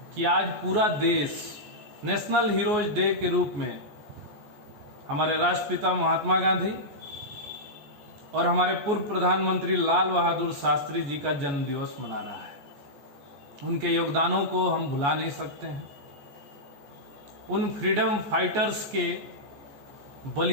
कि आज पूरा देश नेशनल हीरोज डे के रूप में हमारे राष्ट्रपिता महात्मा गांधी और हमारे पूर्व प्रधानमंत्री लाल बहादुर शास्त्री जी का जन्म दिवस मना रहा है। उनके योगदानों को हम भुला नहीं सकते हैं। उन फ्रीडम फाइटर्स के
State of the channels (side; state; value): left; late; 14 ms